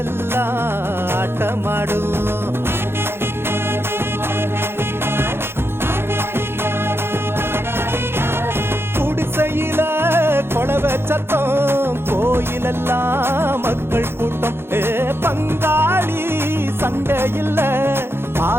ஆட்டமாடும் குடிசையில கொளவை சத்தம் கோயிலெல்லாம் மக்கள் கூட்டம் பங்காளி சண்டை இல்ல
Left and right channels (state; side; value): late; left; 0.11 ms